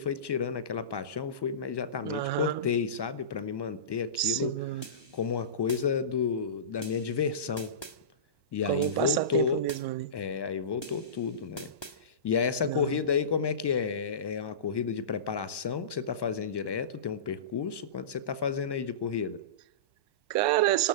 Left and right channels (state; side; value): late; right; 1.1 ms